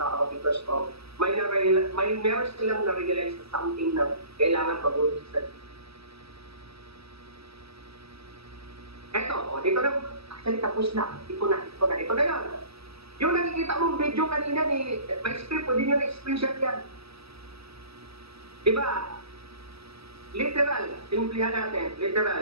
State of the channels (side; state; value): left; late; 0.78 ms